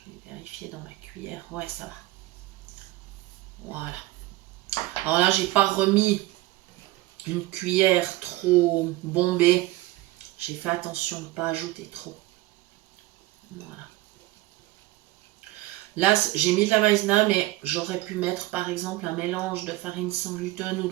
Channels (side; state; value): left; quieter; 18.5 dB